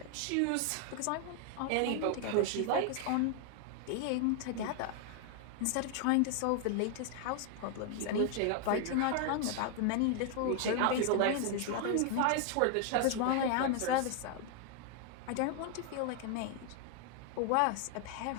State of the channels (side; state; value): both; different; correlation 0.00